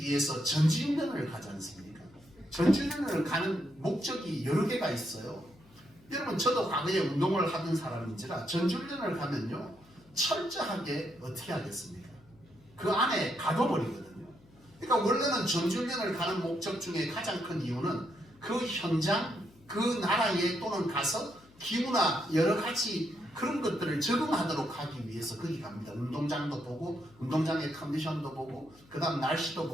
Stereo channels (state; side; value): noise; left; hum, 27 dB below the sound